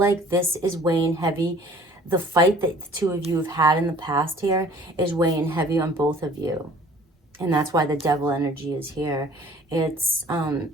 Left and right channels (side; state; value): both; normal; correlation 0.52